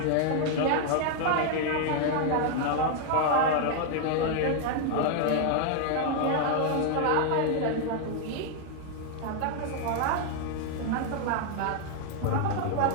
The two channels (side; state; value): both; different; correlation 0.00